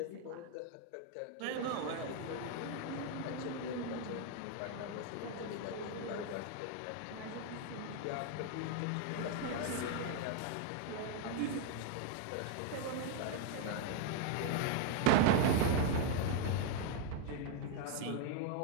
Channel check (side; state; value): both; different; correlation 0.00